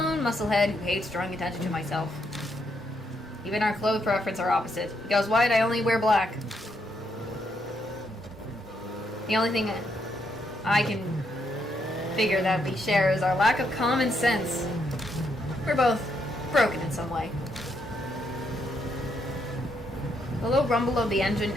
musclehead who hates drawing attention to myself. Even our clothes preference are opposite. He goes white, I only wear black. The only thing I can figure that we share is our lack of common sense. We're both broken in some way. The low rumble of the engine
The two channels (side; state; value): both; normal; correlation 0.77